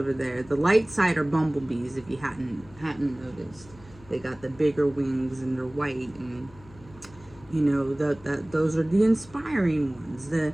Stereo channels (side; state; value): left; noise; hum, 23 dB below the sound